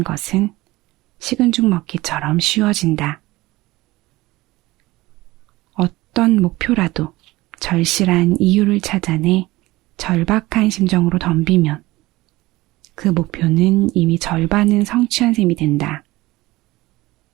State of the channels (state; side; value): quieter; left; 19.3 dB